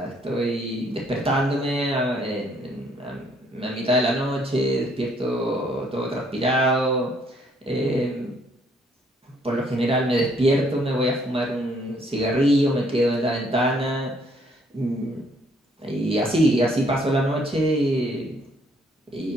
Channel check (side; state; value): both; normal; correlation 0.66